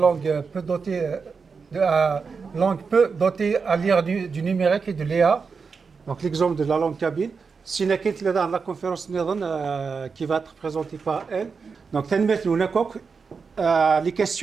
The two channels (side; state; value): left; quieter; 5.2 dB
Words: peu dotées langue peu dotée à l'ère du numérique et de l'IA. Donc l'exemple de la langue kabyle. Si nous dans la conférence qui va être présentée par elle. Donc les